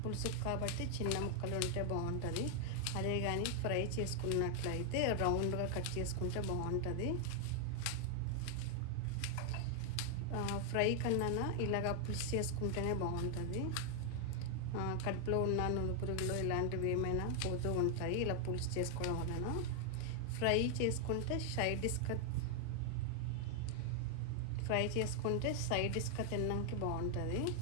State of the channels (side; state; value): both; different; correlation 0.00